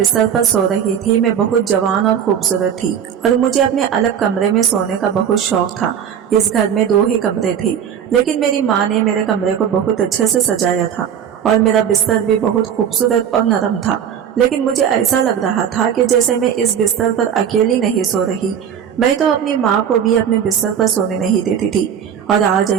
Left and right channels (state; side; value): quieter; left; 8.5 dB